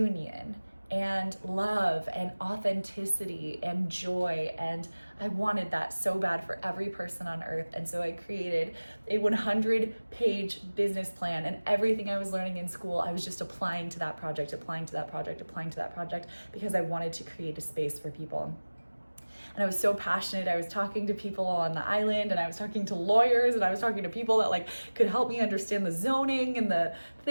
and love and authenticity and joy. And I wanted that so bad for every person on earth. And so I created a 100-page business plan, and everything I was learning in school, I was just applying to that project, because I wanted to create a space for people. And I was so passionate. I was talking to people on the island, and I was talking to lawyers, and I was talking to people that like could help me understand the zoning and the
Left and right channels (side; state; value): both; inverted; correlation -1.00